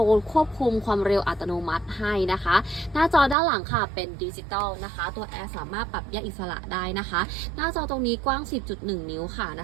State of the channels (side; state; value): left; drops out; at 3.4 s